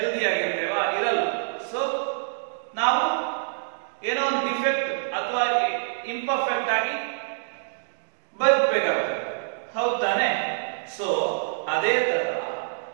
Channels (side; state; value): left; silent; digital silence